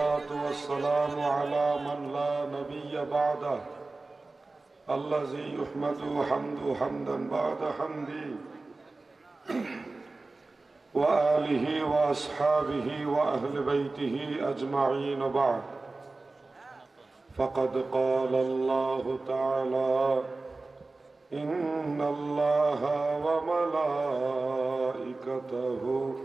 वस्सलामु अला मन ला नबिय्य बअदह अल्लज़ी युहमदु हम्दु हम्दन बअद हम्दी व आलिहि व अस्हाबिहि व अहले बैतिहि अजमईन बअद। फ़क़द क़ाल अल्लाहु तआला इन्नल्लाहा व मलाइकतहु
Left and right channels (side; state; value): left; quieter; 3.4 dB